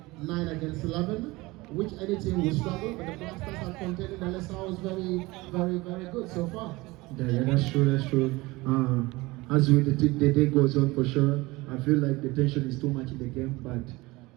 9 against 11, which any team will struggle. But the Black Stars are contending. The Lesau is very good so far. Yeah, that's true. As the day goes on, for sure, I feel like the tension is too much in the game, but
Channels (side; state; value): left; quieter; 21.6 dB